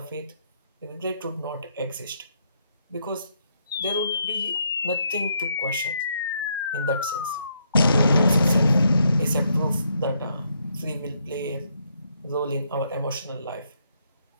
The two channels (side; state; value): both; inverted; correlation -0.75